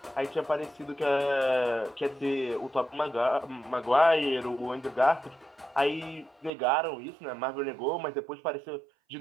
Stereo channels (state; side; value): drops out; left; at 6.5 s